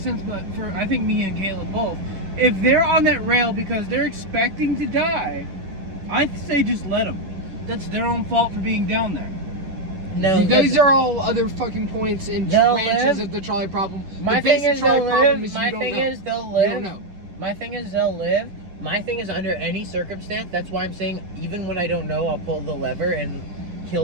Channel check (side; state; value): left; late; 10 ms